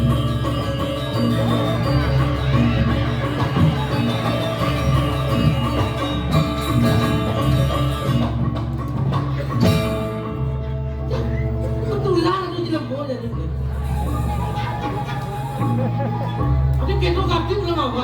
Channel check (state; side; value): identical; both; correlation 1.00